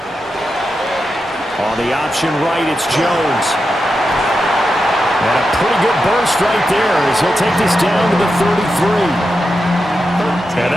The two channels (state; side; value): normal; both; correlation 0.88